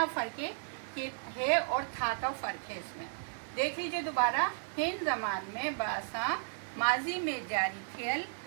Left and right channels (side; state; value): left; silent; digital silence